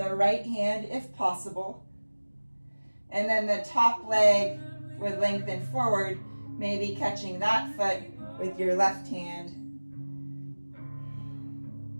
right hand if possible. And then the top leg would lengthen forward, maybe catching that foot with your left hand.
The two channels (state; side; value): inverted; both; correlation -1.00